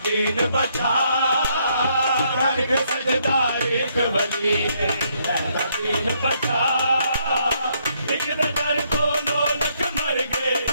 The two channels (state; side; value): inverted; both; correlation -0.72